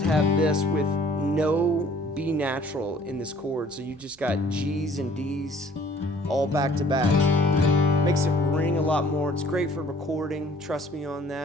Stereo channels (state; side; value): normal; both; correlation 0.55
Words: have this with no B natural in this chord. So you just got G's and D's all back to back. Makes it ring a lot more. It's great for recording. Trust me on